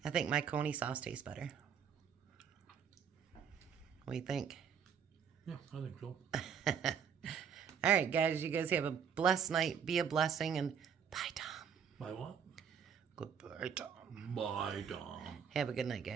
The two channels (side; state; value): left; quieter; 7.4 dB